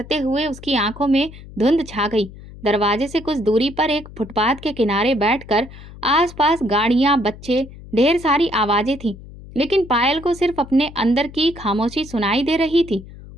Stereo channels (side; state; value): left; noise; hum, 17 dB below the sound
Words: हुए उसकी आंखों में धुंध छा गई। दरवाजे से कुछ दूरी पर एक फुटपाथ के किनारे बैठकर आसपास गाड़ियां, बच्चे, ढेर सारी आवाजें थीं, लेकिन पायल को सिर्फ अपने अंदर की खामोशी सुनाई दे रही थी।